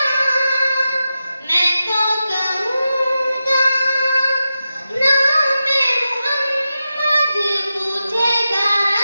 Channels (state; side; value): inverted; both; correlation -0.91